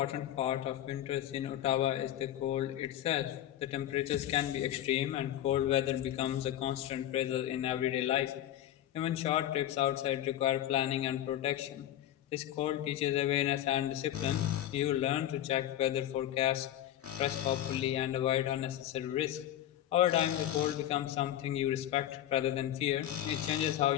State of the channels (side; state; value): right; quieter; 12.2 dB